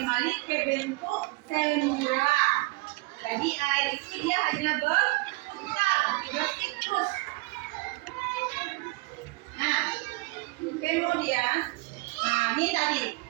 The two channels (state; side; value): quieter; left; 24.6 dB